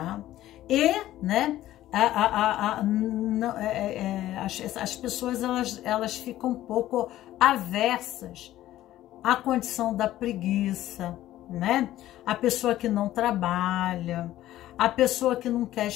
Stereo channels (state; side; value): quieter; right; 14.1 dB